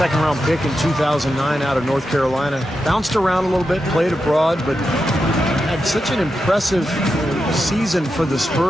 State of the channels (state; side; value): normal; both; correlation 0.88